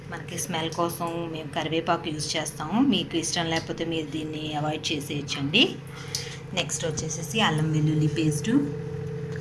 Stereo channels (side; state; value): both; identical; correlation 1.00